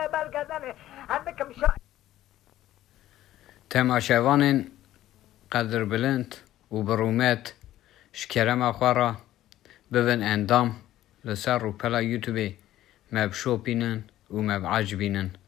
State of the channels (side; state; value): right; quieter; 13.9 dB